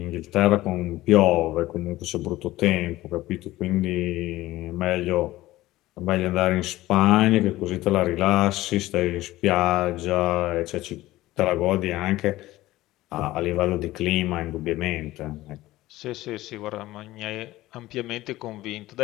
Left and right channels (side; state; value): right; quieter; 16.9 dB